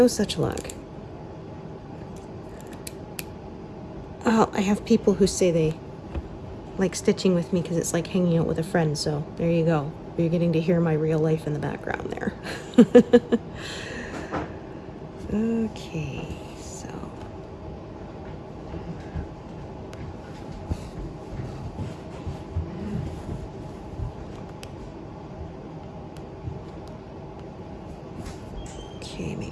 such luck. I have people who say they like stitching with me because it's like hanging out with a friend, so there you go. You're getting to hear my real life in the background there. Okay, so. Okay,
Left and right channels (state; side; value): identical; both; correlation 1.00